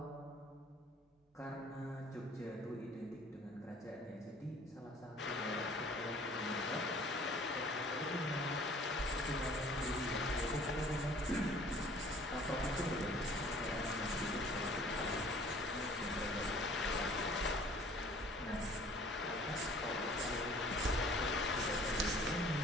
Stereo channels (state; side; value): normal; both; correlation 0.53